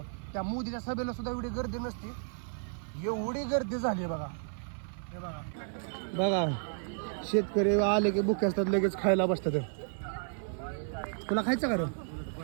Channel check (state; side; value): silent; left; 56 dB below the other